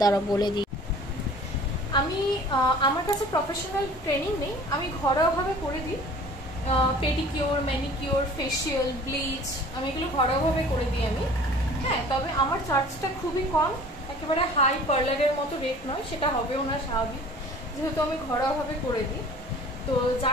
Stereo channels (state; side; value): normal; both; correlation 0.47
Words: বলে দিই। আমি আমার কাছে প্রফেশনাল ট্রেনিং নেই, আমি ঘরোয়াভাবে করে দিই। পেডিকিওর, ম্যানিকিওর, ফেশিয়াল, ব্লিচ, আমি এগুলো ঘরোয়াভাবে করে দিই আমি। হ্যাঁ, তবে আমার চার্জটা খুবই কম, একেবারে হাই পার্লারের মতো রেট নয়, সেটা হবেও না স্বাভাবিক, যেহেতু আমি ঘরোয়াভাবে করে দিই। তো